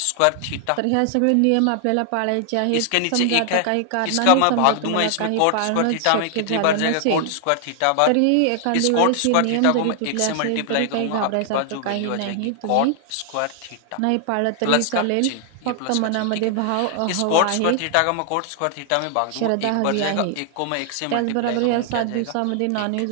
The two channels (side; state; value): both; different; correlation 0.00